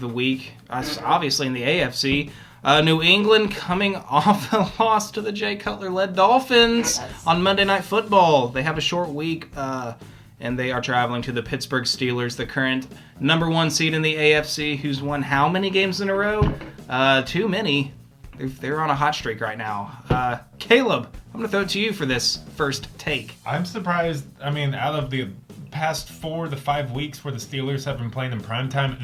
the week. Obviously in the AFC. New England coming off a loss to the Jay Cutler-led Dolphins on Monday Night Football. They have a short week, and they are traveling to the Pittsburgh Steelers, the current number 1 seed in the AFC, who's won how many games in a row? Too many. They're on a hot streak right now. Caleb, I'm going to throw it to you for this first take. I'm surprised. Out of the past 4 to 5 weeks where the Steelers have been playing in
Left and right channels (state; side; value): identical; both; correlation 1.00